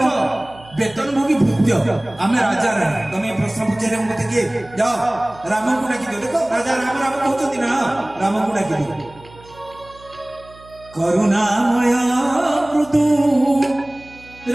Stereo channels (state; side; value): noise; right; hum, 23 dB below the sound